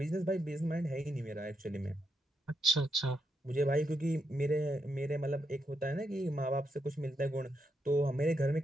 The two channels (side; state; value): both; normal; correlation 0.82